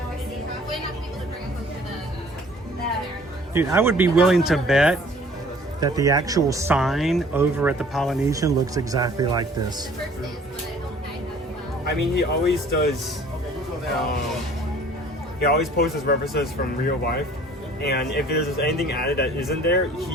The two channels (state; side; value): normal; both; correlation 0.53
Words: Dude, I would be willing to bet that the actual sign over at the Polynesian looks exactly like this. I mean, he always does. He always posts his references from real life, and if there's anything added that isn't there,